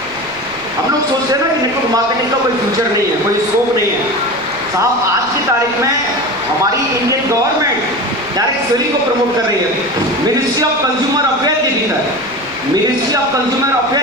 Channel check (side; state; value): right; noise; rumble, 24 dB below the sound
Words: हम लोग सोचते हैं ना कि नेटवर्क मार्केटिंग का कोई फ्यूचर नहीं है, कोई स्कोप नहीं है। साहब आज की तारीख में हमारी इंडियन गवर्नमेंट डायरेक्ट सेलिंग को प्रमोट कर रही है। मिनिस्ट्री ऑफ कंज्यूमर अफेयर के भीतर, मिनिस्ट्री ऑफ कंज्यूमर